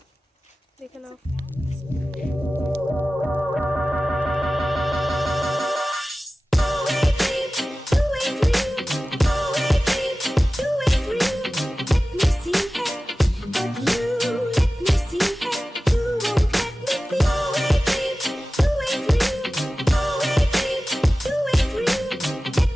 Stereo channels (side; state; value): both; normal; correlation 0.96